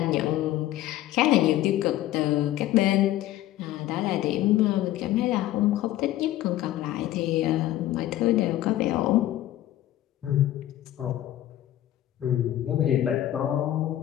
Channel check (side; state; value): right; quieter; 13.9 dB